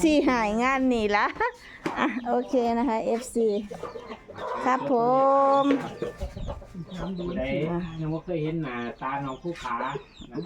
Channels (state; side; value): identical; both; correlation 1.00